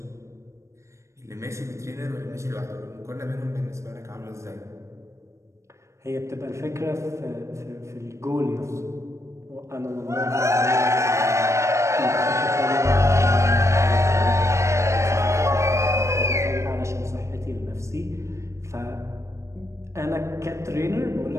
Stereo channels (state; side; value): late; left; 0.14 ms